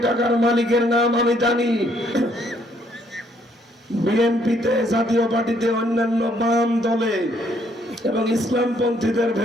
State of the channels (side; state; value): both; normal; correlation 0.68